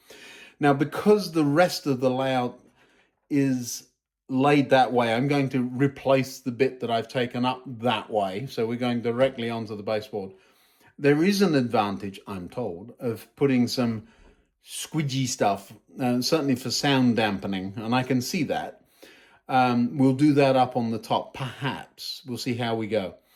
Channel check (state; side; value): identical; both; correlation 1.00